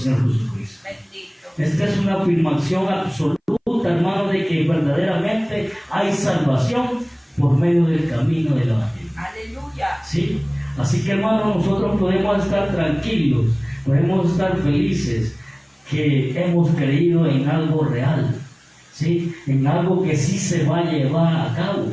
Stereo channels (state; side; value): identical; both; correlation 1.00